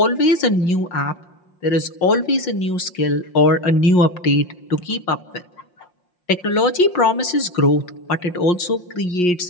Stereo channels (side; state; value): right; late; 5.6 ms